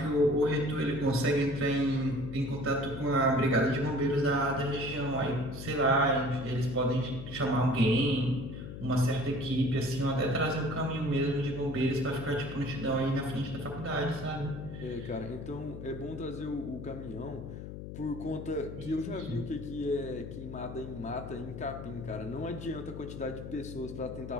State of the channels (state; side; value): noise; left; hum, 9 dB below the sound